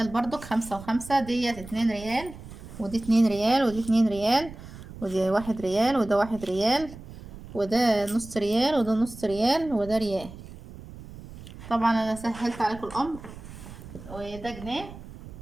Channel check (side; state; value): right; noise; rumble, 15 dB below the sound